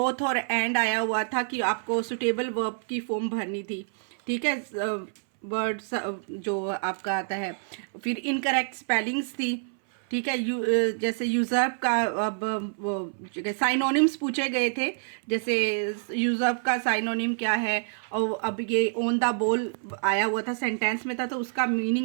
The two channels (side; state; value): left; silent; 60 dB below the other